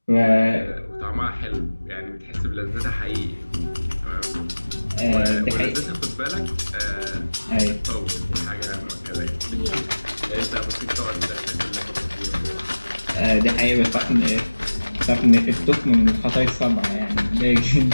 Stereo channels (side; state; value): both; inverted; correlation -1.00